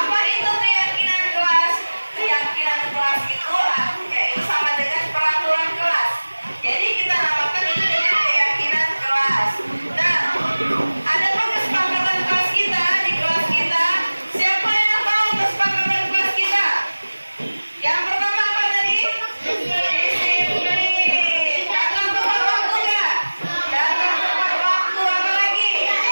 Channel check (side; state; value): both; inverted; correlation -1.00